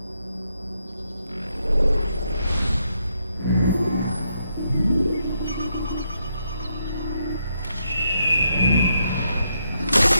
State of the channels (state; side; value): inverted; both; correlation -0.78